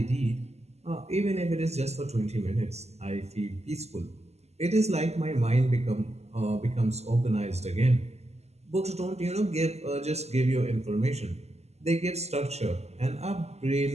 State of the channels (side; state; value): left; late; 0.31 ms